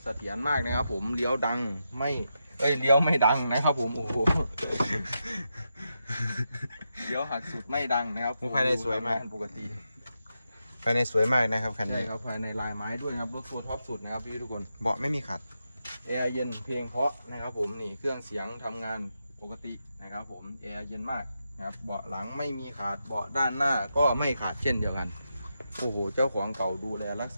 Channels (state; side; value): inverted; both; correlation -0.86